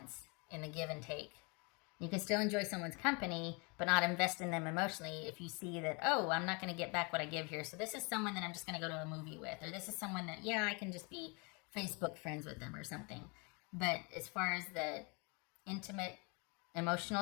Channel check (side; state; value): right; quieter; 31.2 dB